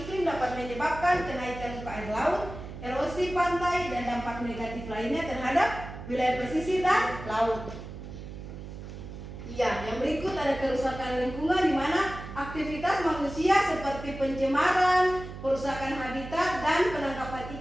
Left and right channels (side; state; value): right; noise; hum, 11 dB below the sound